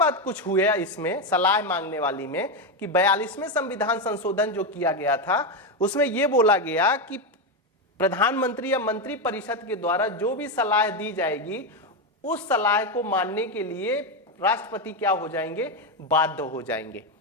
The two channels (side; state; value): both; normal; correlation 0.09